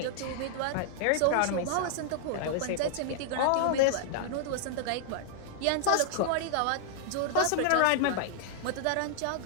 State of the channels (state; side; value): different; both; correlation -0.01